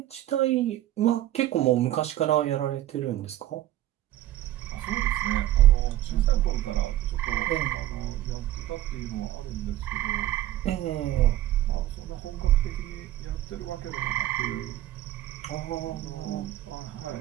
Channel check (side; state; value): left; quieter; 14.1 dB